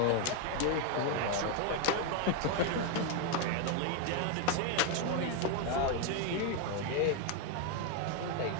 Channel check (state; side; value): different; both; correlation 0.01